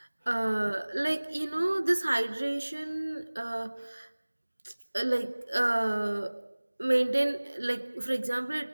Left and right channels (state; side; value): inverted; both; correlation -1.00